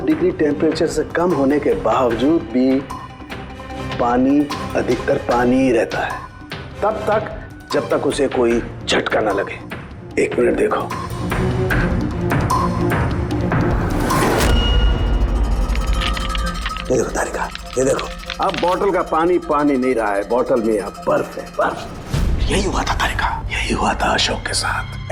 डिग्री टेम्परेचर से कम होने के बावजूद भी पानी अधिकतर पानी ही रहता है, तब तक जब तक उसे कोई झटका ना लगे। 1 मिनट देखो, ये देखो तारिका, ये देखो, अब बोतल का पानी पानी नहीं रहा है, बोतल में अब बर्फ है, बर्फ। यही हुआ था तारिका, यही हुआ था अशोक के साथ।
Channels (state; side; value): identical; both; correlation 1.00